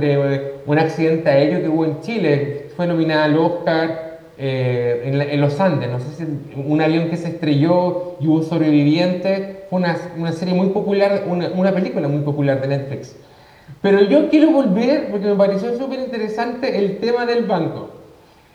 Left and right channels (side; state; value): both; identical; correlation 1.00